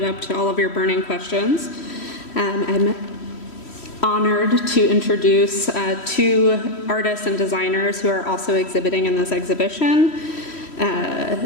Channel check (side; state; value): right; late; 3.1 ms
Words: up to all of your burning questions. I'm honored to introduce 2 artists and designers who are also exhibiting in this exhibition,